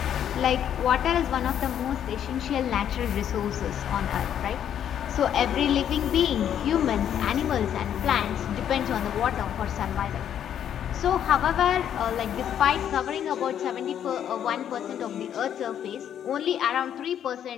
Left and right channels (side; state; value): right; quieter; 9.7 dB